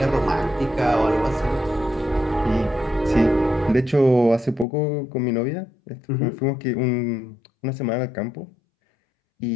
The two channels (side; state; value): right; drops out; at 4.7 s